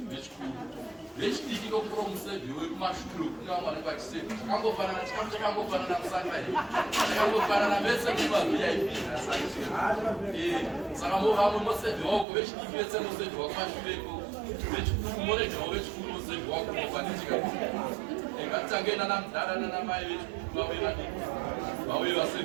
Vechidiki kokura musevi wekumashure kuna vamwe vachisevi. Chakangofanana chikafu chakangofanana musangari. Chakangofanana vese kuvaVIP. Saka vamwe musevi wako vechidiki vese musevi wekumashure ko. Vechikuru morejawo vechikuru musevi wako mofanisika. Ngatitange nana mudhara nana mai vechikuru vave vadiki. Vauye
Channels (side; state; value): left; drops out; at 12.2 s